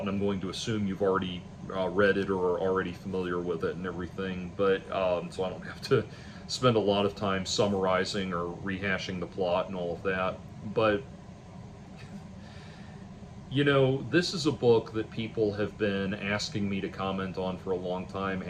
and I'm going to assume you've already read it or are already familiar with it and everything. But so I don't have to spend a lot of time summarizing or rehashing the plot and all of that. But this is a book that people have been asking me to comment on for a long time,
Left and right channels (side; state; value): both; identical; correlation 1.00